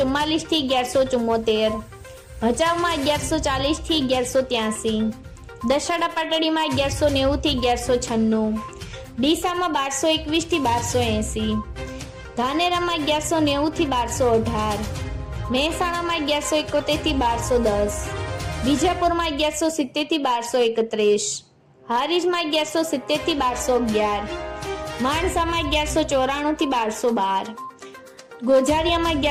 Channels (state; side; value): identical; both; correlation 1.00